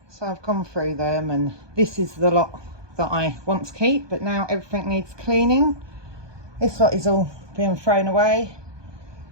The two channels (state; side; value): late; left; 1.2 ms